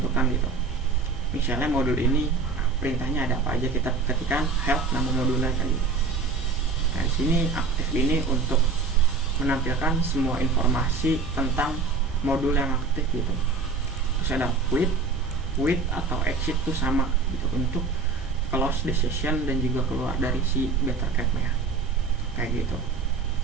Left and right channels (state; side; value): quieter; left; 4.4 dB